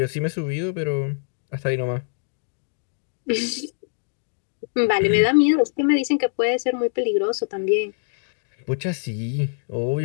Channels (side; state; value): right; silent; digital silence